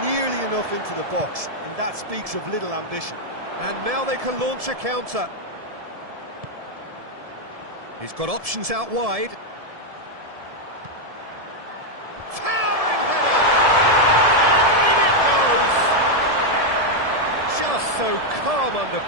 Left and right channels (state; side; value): late; left; 1.7 ms